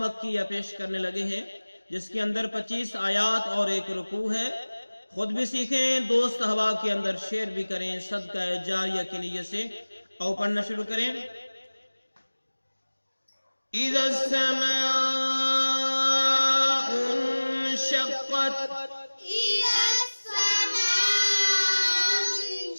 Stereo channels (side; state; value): both; inverted; correlation -1.00